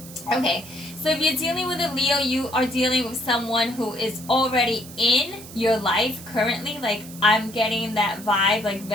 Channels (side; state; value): right; noise; hiss, 16 dB below the sound